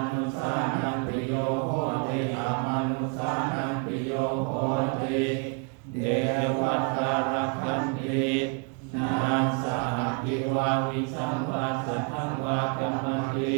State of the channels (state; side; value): quieter; left; 34.2 dB